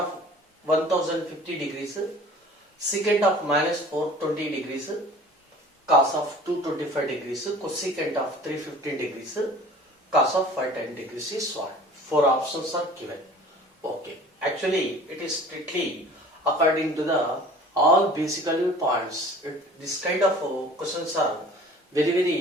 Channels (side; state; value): both; normal; correlation 0.46